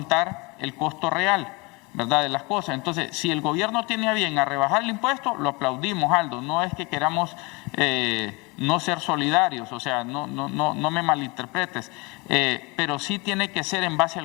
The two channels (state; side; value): quieter; right; 26.9 dB